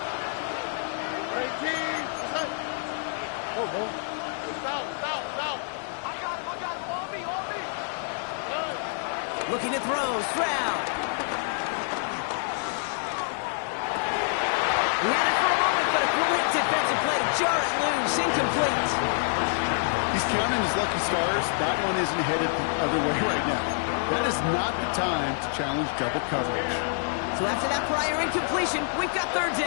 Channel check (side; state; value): right; silent; digital silence